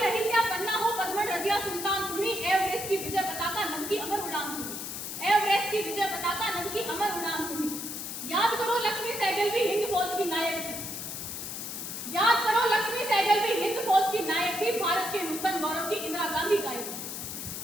अहिल्या पन्ना हो, पद्मन रजिया सुल्तान तुम्ही। एवरेस्ट की विजय पताका नभ की अमर उड़ान तुम्ही, एवरेस्ट की विजय पताका नभ की अमर उड़ान तुम्ही। याद करो लक्ष्मी सहगल भी हिंद फौज की नायक थी, याद करो लक्ष्मी सहगल भी हिंद फौज की नायक थी। भारत के नूतन गौरव की इंदिरा गांधी गायक थी,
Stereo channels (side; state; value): left; noise; hiss, 6 dB below the sound